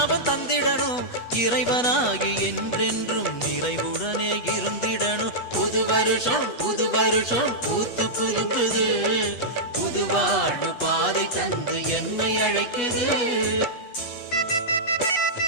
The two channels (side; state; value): right; late; 8.3 ms